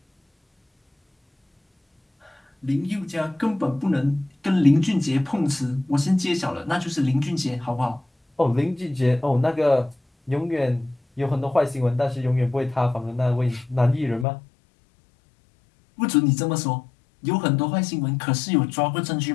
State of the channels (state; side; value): drops out; right; at 14.2 s